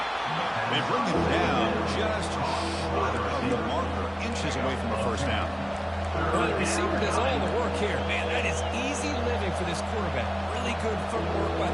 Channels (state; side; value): identical; both; correlation 1.00